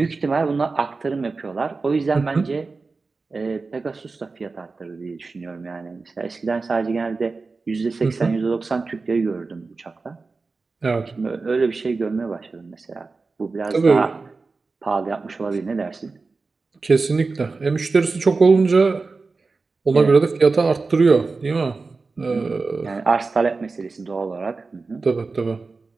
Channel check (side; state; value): left; quieter; 4.0 dB